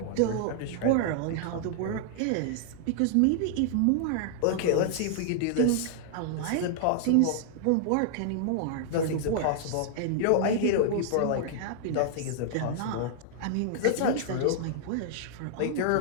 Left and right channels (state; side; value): different; both; correlation -0.01